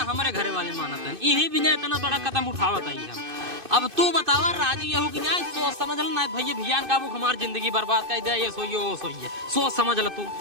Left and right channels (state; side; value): late; left; 2.6 ms